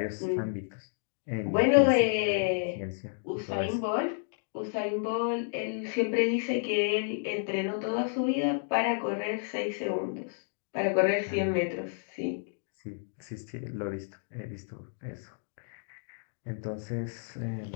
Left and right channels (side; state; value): right; silent; digital silence